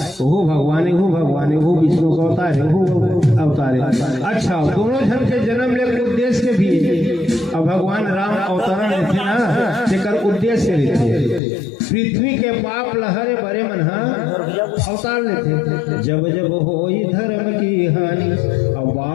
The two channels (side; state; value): right; drops out; at 11.4 s